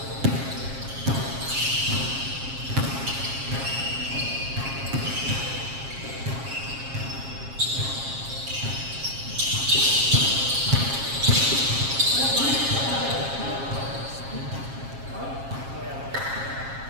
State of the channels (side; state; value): left; late; 7.4 ms